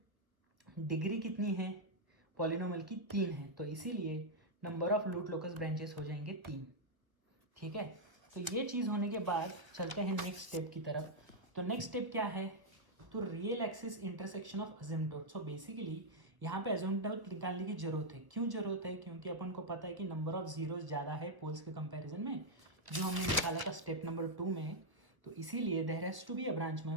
डिग्री कितनी है पॉलिनोमियल की, 3 है। तो इसीलिए number of root locus branches हो जाएंगे 3। ठीक है, तो ये चीज़ होने के बाद चलते हैं नेक्स्ट स्टेप की तरफ। तो नेक्स्ट स्टेप क्या है, तो real axis intersection of asymptote. So basically यहाँ पे असिम्पटोट निकालने की जरूरत है। क्यों जरूरत है, क्योंकि अपन को पता है कि नंबर ऑफ जीरोस ज़्यादा है पोल्स के कंपैरिजन में, जो हमने निकाला था स्टेप नंबर 2 में। तो इसीलिए there has to be a branch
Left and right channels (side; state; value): left; late; 1.4 ms